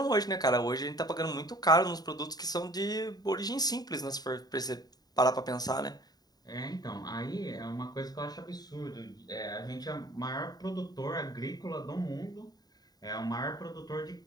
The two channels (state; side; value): late; right; 0.19 ms